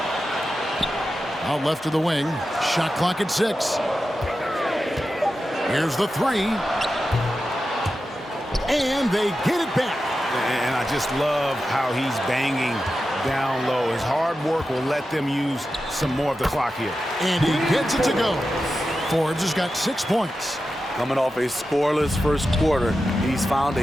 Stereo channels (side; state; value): both; normal; correlation 0.91